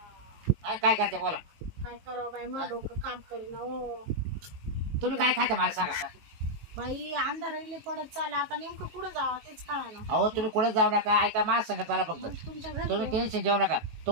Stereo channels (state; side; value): late; left; 19 ms